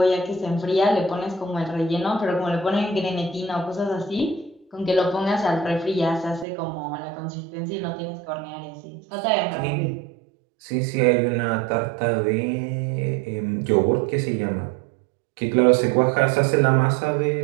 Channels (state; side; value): drops out; left; at 6.5 s